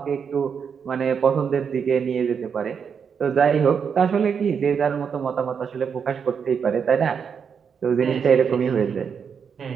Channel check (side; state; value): left; quieter; 6.7 dB